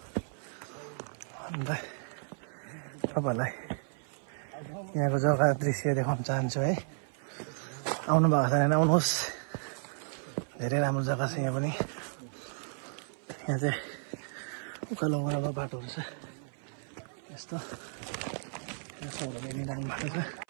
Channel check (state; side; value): silent; left; 56 dB below the other